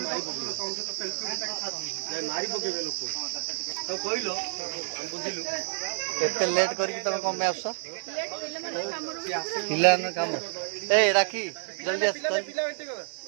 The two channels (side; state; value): left; silent; digital silence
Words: एते लेट करके तुम कौन में आस काम ए राखी जल्दी आस